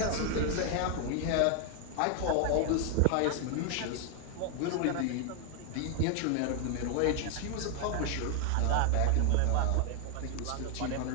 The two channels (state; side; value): different; both; correlation 0.00